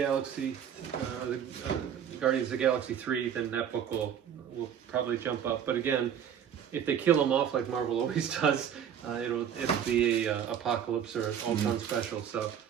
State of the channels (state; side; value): quieter; left; 8.8 dB